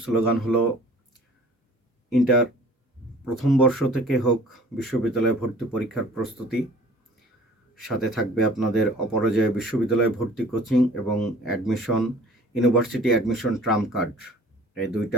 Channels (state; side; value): normal; both; correlation 0.49